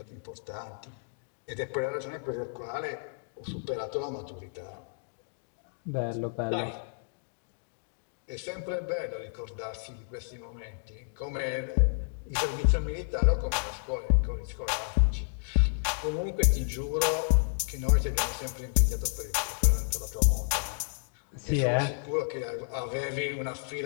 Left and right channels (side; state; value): right; silent; digital silence